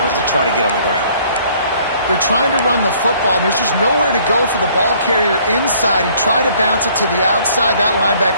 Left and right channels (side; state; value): both; inverted; correlation -0.59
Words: to try to get on the ground. They're trying to run the football, and there's just nowhere to go for the ball carrier inside. He tried to bounce it to the outside. That